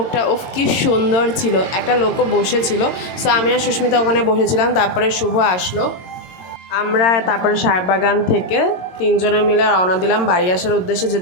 ওফ কি সুন্দর ছিল, একটা লোকও বসেছিল। সো আমি আর সুস্মিতা ওখানে বসেছিলাম। তারপরে শুভ আসলো। আমরা তারপরে সাহেববাগান থেকে তিনজনে মিলে রওনা দিলাম বাড়ি আসার উদ্দেশ্যে,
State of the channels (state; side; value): late; right; 22 ms